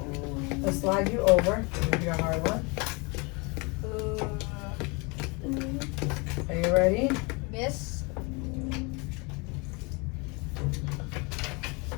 Let's slide you over. Give you a hard one. Are you ready? Miss.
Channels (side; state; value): right; quieter; 29.3 dB